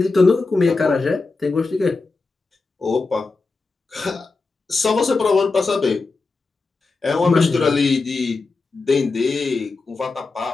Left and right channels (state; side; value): quieter; right; 3.9 dB